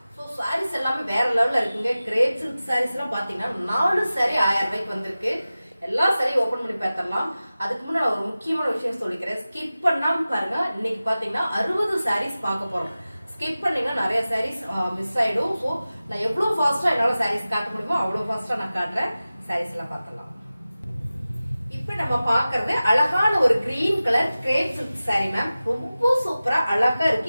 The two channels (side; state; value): both; inverted; correlation -0.96